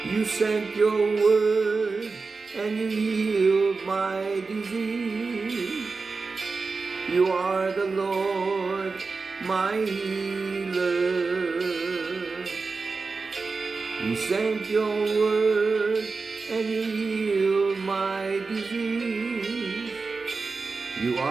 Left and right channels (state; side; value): quieter; left; 4.3 dB